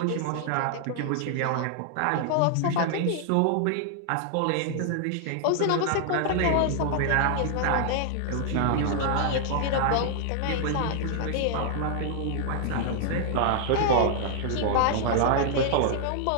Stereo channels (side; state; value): both; different; correlation 0.00